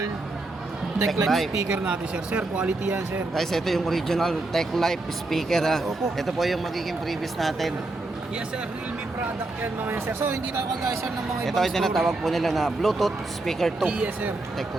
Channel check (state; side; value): quieter; left; 3.0 dB